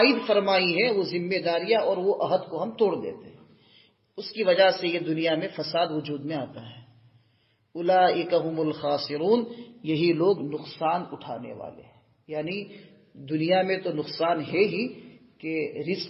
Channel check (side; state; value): both; identical; correlation 1.00